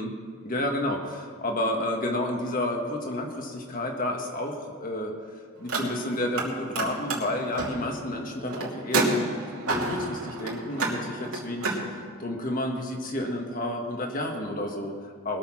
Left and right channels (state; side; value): normal; both; correlation 0.24